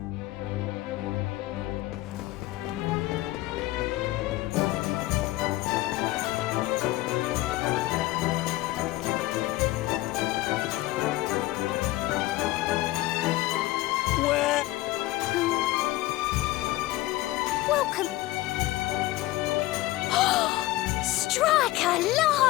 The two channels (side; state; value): right; quieter; 17.6 dB